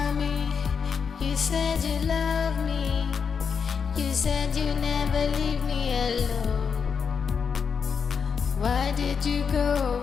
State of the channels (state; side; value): quieter; right; 6.2 dB